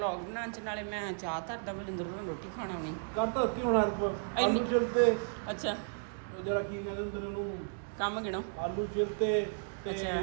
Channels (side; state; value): left; silent; digital silence